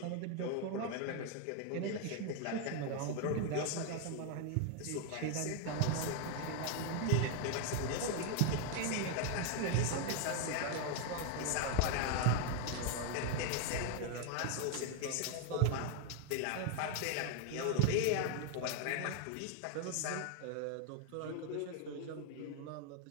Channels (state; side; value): different; both; correlation 0.00